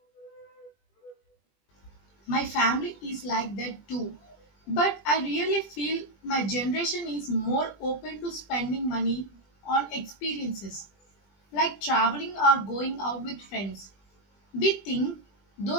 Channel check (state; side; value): late; right; 20 ms